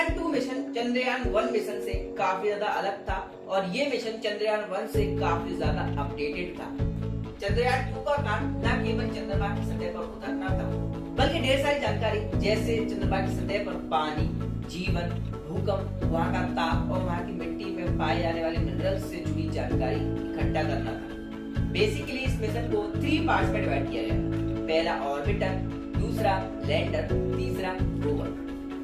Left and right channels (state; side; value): identical; both; correlation 1.00